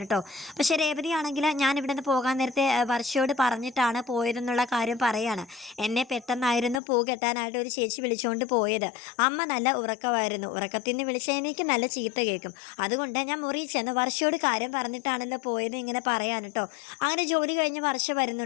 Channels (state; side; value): drops out; right; at 6.8 s